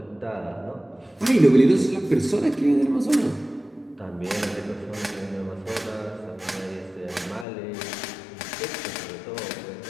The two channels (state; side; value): drops out; right; at 7.5 s